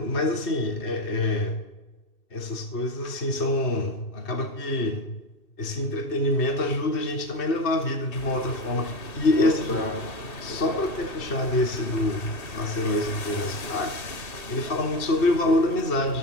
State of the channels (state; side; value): late; right; 2.7 ms